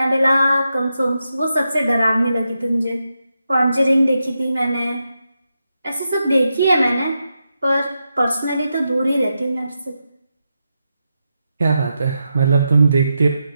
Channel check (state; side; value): inverted; both; correlation -0.86